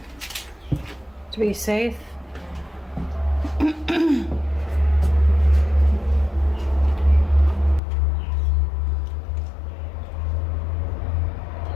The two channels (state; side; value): drops out; right; at 7.8 s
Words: To be safe.